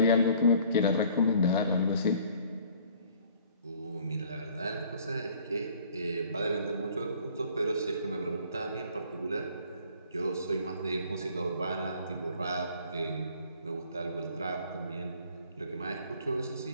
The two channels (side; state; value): both; inverted; correlation -0.55